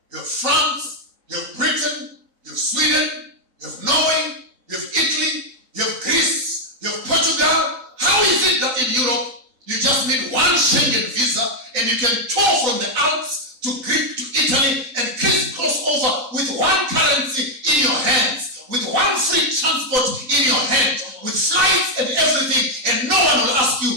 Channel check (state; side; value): late; left; 4.0 ms